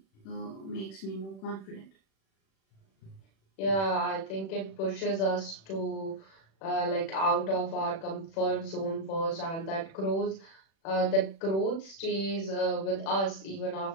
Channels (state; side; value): late; right; 36 ms